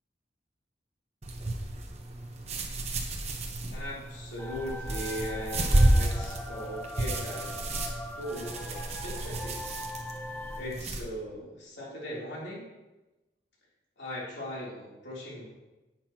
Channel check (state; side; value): normal; both; correlation 0.82